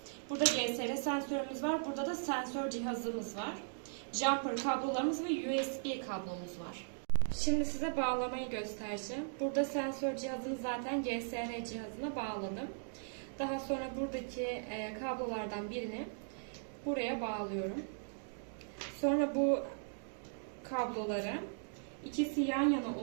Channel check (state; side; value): silent; left; digital silence